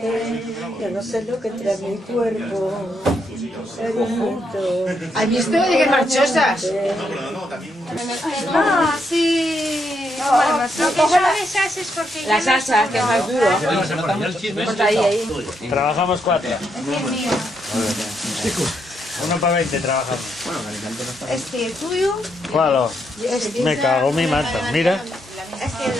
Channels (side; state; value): both; normal; correlation 0.78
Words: yo no sé lo que trae mi cuerpo, cariñito. ¿Has visto? Oye, qué marchosas. Ah, sí. Bueno, lo que son esas es porque... La salsa, que es más duro. Ponte ahí. Trabajamos 4. Es mío. Uno para 20 trabajamos. Este, el tuyo. ¿Cuál? Me cago en mi manta. Mira. Este, el